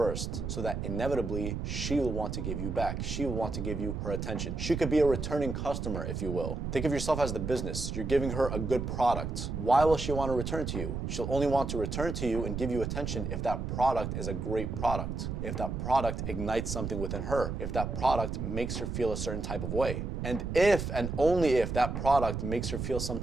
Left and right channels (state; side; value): noise; right; rumble, 4 dB below the sound